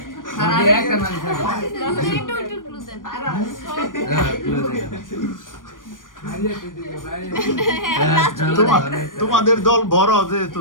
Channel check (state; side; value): late; right; 0.89 ms